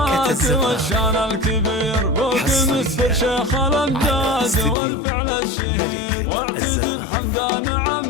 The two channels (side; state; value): right; drops out; at 4.8 s